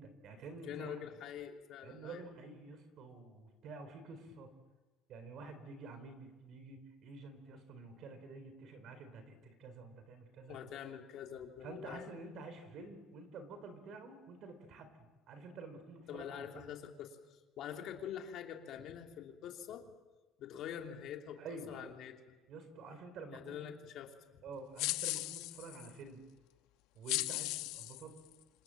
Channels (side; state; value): right; quieter; 5.9 dB